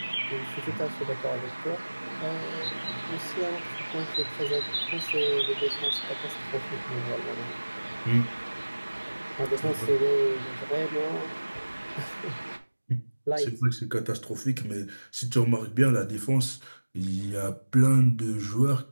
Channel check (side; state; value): both; inverted; correlation -1.00